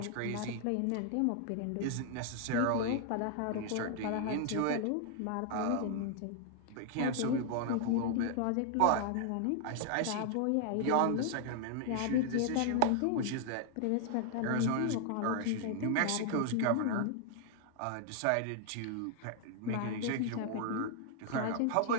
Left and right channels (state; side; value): different; both; correlation 0.00